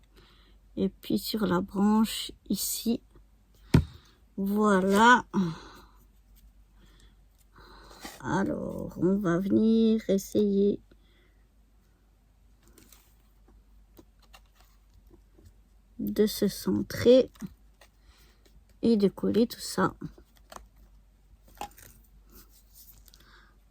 Et puis sur la branche, ici. Voilà. Alors, on va venir essayer de se centrer et de coller tout ça.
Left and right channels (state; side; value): identical; both; correlation 1.00